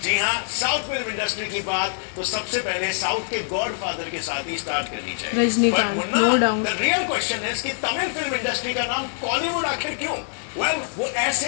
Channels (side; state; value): right; silent; digital silence